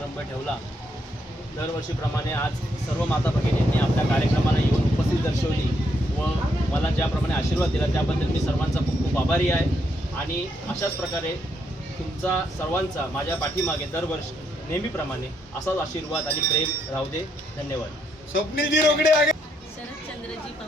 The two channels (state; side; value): normal; both; correlation 0.76